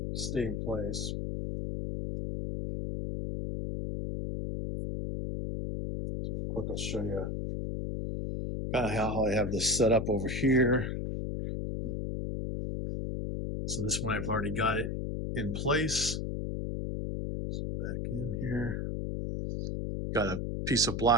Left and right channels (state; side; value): noise; left; hum, 2 dB below the sound